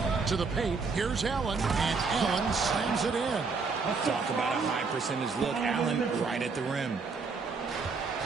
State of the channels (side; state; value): left; quieter; 4.6 dB